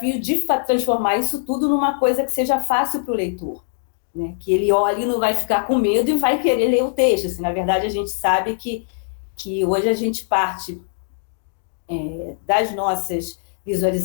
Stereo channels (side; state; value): right; silent; digital silence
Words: de transformar isso tudo numa coisa que seja fácil para o leitor, né? Que ele olhe e não vai ficar com medo e vai querer ler o texto. Assim, na verdade, a gente sabe que hoje a gente parte das nossas